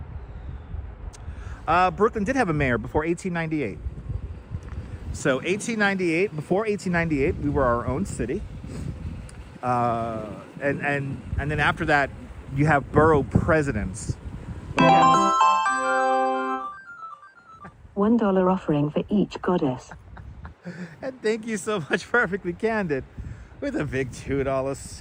Brooklyn did have a mayor before 1898. So before 1898, we were our own city. And then after that, you have borough presidents. $1 offering for each goddess. And thank you so much, Perfectly Candid, with a big $2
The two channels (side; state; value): both; identical; correlation 1.00